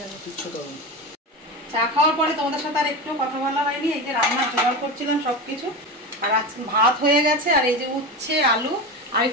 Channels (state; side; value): normal; both; correlation 0.22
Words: যাবে, কিচ্ছু করুন। চা খাওয়ার পরে তোমাদের সাথে আর একটু কথা বলা হয়নি। এই যে রান্নার জোগাড় করছিলাম সব কিছু, আর আজকে ভাত হয়ে গেছে, আর এই যে উচ্ছে আলু আর